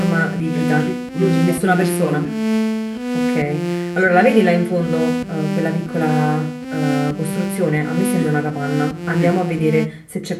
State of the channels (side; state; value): both; identical; correlation 1.00